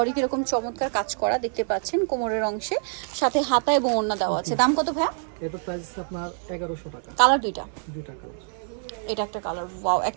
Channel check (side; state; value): left; silent; digital silence